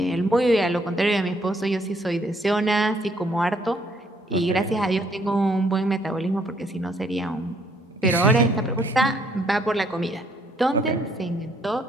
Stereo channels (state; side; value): normal; both; correlation 0.67